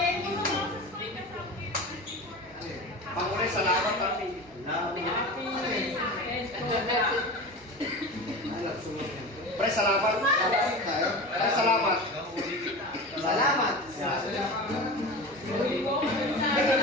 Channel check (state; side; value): normal; both; correlation 0.30